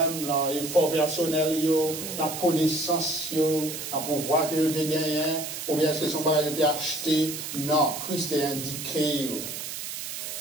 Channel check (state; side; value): noise; right; hiss, 7 dB below the sound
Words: l'effort personnel, la connaissance, le pouvoir que vous avez gagné, ou bien est-ce que son bagage a été acheté? Non, Christ est indiqué.